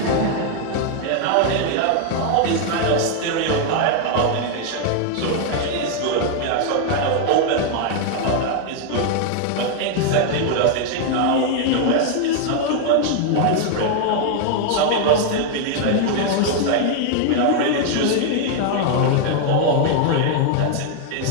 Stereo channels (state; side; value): different; both; correlation 0.00